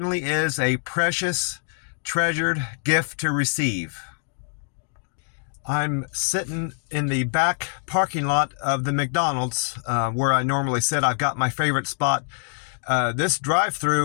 is a precious, treasured gift to receive. I'm sitting in the back parking lot of the McDonald's where I normally sit. I've got my favorite spot. This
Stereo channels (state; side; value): silent; right; digital silence